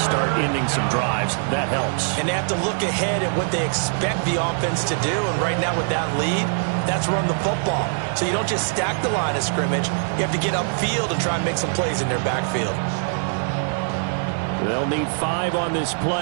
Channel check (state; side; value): silent; left; 64 dB below the other